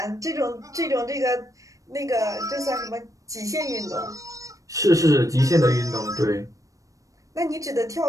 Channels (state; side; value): late; left; 0.16 ms